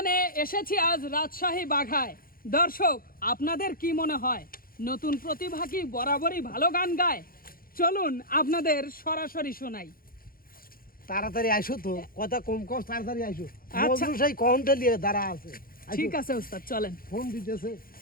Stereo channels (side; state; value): right; late; 0.42 ms